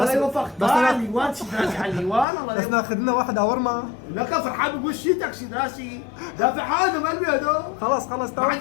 لا يوفق على اليوان، سيدراسي على اليوان، الله بس ناخذ لنا واحد اورما. لك فرحان بقول شيتك سيدراسي، دافع حاله مقلبي هدول. خلاص تمام. ما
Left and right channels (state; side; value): drops out; right; at 2.2 s